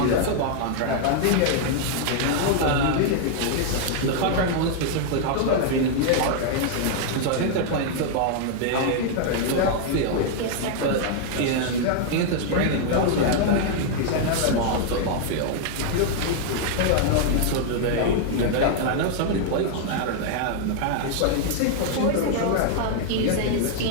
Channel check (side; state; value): both; different; correlation 0.00